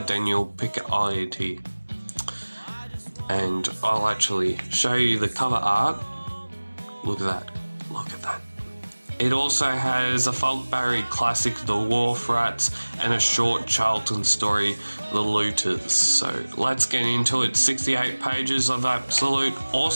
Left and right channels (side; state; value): both; inverted; correlation -1.00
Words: Daniel Picciotti. And I'll actually show you the cover art. Look at that. Look at that. It also has a Falk Barry classic, The Wharf Rats, and a short Charlton story, The Looters. So let's get into it. 68 pages of absolute